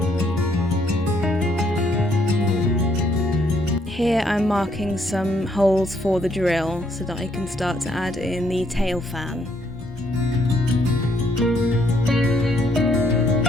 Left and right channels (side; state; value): both; normal; correlation 0.70